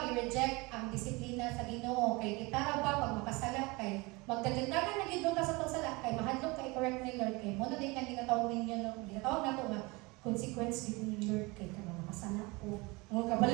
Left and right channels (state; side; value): quieter; left; 25.1 dB